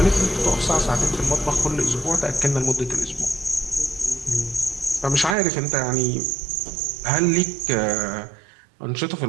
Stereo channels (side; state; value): left; drops out; at 5.4 s